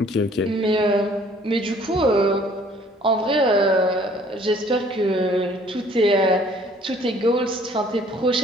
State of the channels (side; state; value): both; normal; correlation 0.57